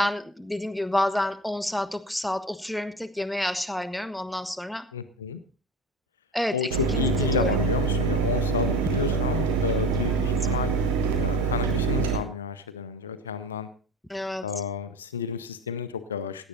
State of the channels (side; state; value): both; normal; correlation 0.31